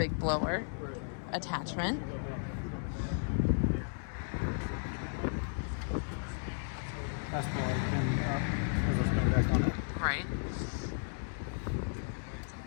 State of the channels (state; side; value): silent; right; digital silence